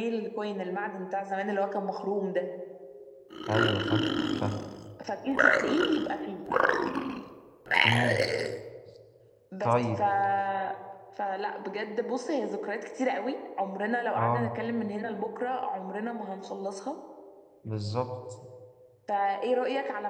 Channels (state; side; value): identical; both; correlation 1.00